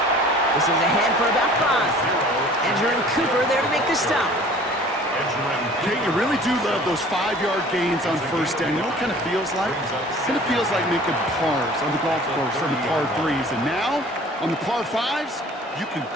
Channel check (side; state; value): both; normal; correlation 0.48